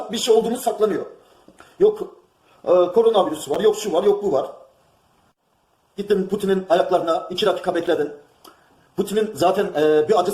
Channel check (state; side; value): identical; both; correlation 1.00